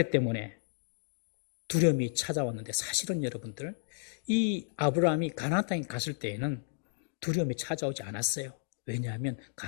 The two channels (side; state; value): right; silent; digital silence